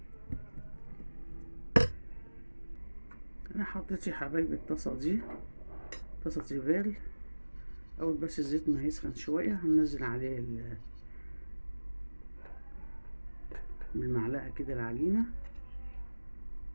انا حطيت يا حبايبي الطاسة دي طاسة تيفال. اول بس الزيت ما يسخن شوية هننزل عليه بالمعلقة كده العجينة،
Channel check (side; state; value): both; inverted; correlation -1.00